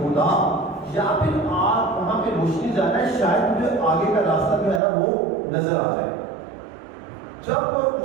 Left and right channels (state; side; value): drops out; left; at 4.8 s